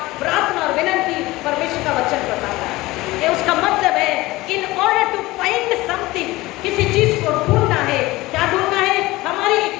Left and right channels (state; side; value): quieter; right; 19.5 dB